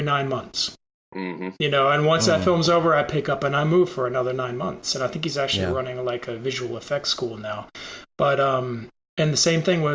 9 months. Mm-hmm. And once that film's over, I pick up and I move for another 9 months. And I think he's actually Yeah. running like a visual effects school now. But and the same thing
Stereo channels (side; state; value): both; identical; correlation 1.00